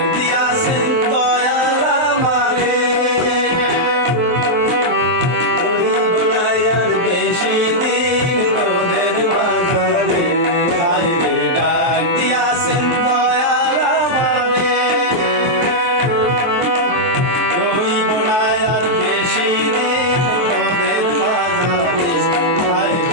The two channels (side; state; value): left; late; 23 ms